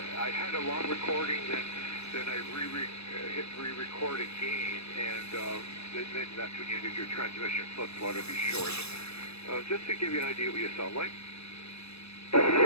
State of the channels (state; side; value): late; right; 0.79 ms